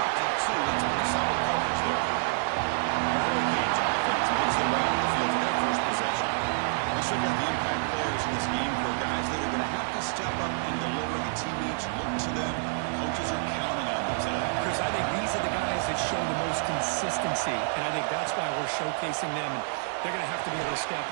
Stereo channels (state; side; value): silent; left; digital silence